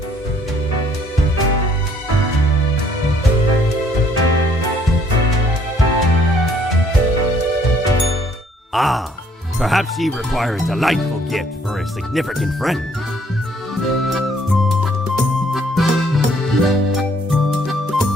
Ah, perhaps ye require a delightful gift for a significant friend.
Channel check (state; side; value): normal; both; correlation 0.63